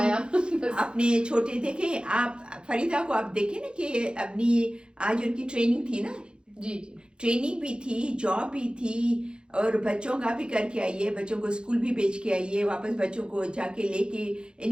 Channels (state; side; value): late; left; 0.051 ms